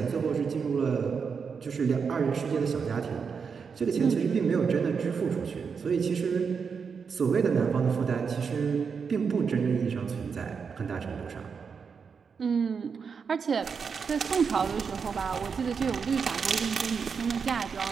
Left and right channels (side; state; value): left; quieter; 5.9 dB